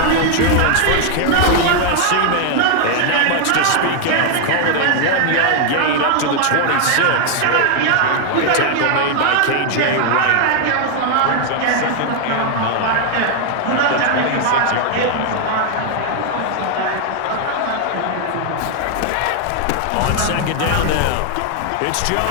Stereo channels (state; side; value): different; both; correlation 0.00